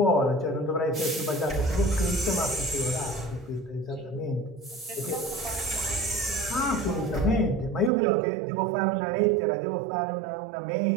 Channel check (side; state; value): left; drops out; at 7.9 s